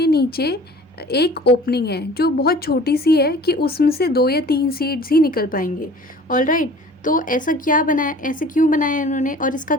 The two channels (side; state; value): both; normal; correlation 0.46